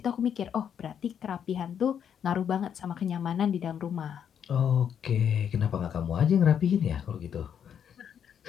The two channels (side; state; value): right; quieter; 8.4 dB